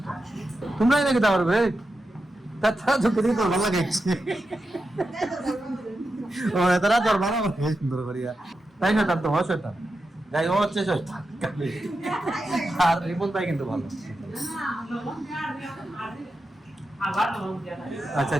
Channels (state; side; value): normal; both; correlation 0.89